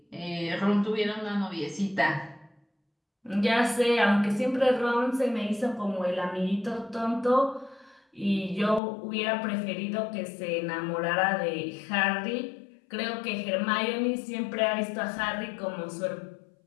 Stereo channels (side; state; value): right; drops out; at 8.8 s